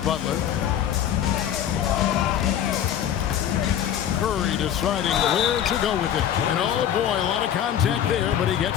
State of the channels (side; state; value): right; quieter; 10.1 dB